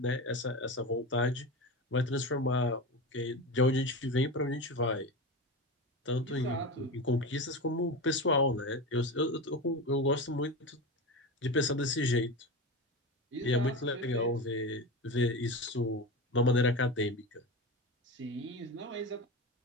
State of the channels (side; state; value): both; normal; correlation 0.23